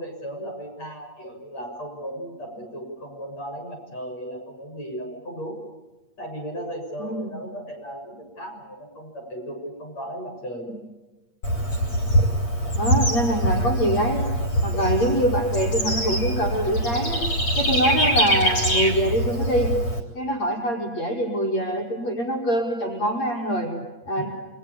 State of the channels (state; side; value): late; right; 8.5 ms